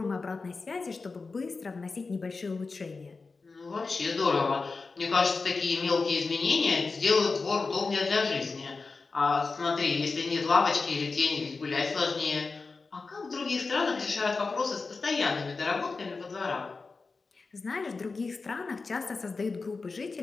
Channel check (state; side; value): quieter; right; 4.2 dB